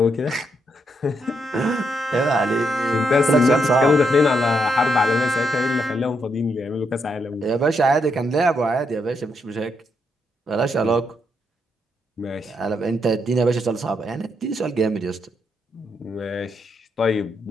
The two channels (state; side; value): normal; both; correlation 0.79